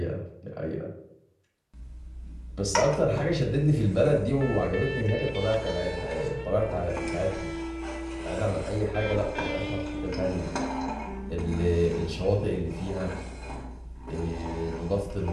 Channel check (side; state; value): both; identical; correlation 1.00